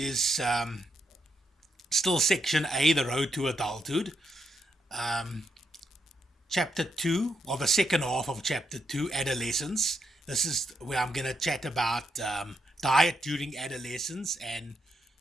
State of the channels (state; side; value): normal; both; correlation 0.80